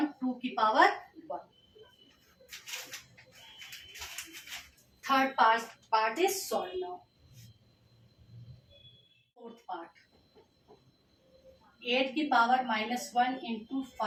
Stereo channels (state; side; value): identical; both; correlation 1.00